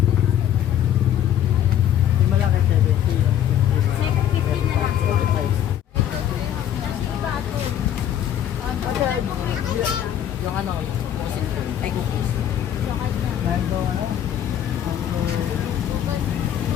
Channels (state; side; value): quieter; right; 10.5 dB